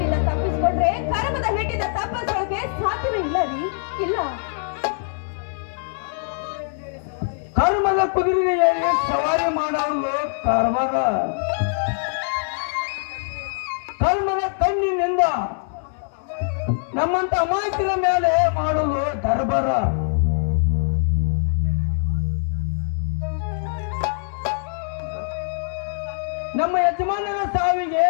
ತಪ್ಪಿಸ್ಕೊಂಡ್ರೆ ಕರ್ಮದ ಹೇಟಿಂದ ತಪ್ಪಿಸೋಕೆ ಸಾಧ್ಯವೇ ಇಲ್ಲ ರೀ, ಇಲ್ಲ. ಕರ್ಮದ ಕುದುರೆಗೆ ಸವಾರಿ ಮಾಡೋದು ಕಾರ್ಬಾರ. ಕರ್ಮದ ಕಣ್ಣಿನಿಂದ ನಮ್ಮಂತ ಅಮಾಯಕರ ಮೇಲೆ ಮಾಡುವುದು ದರ್ಬಾರ. ನಮ್ಮ ಯಜಮಾನನ ಸಾವಿಗೆ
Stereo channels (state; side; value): silent; right; digital silence